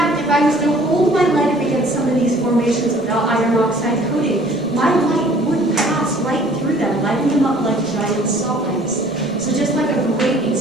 if I was to hold my light up against some of these formations without iron oxide coating, my light would pass right through them, lighting them up like giant salt lamps. So just like a great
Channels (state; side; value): noise; right; rumble, 28 dB below the sound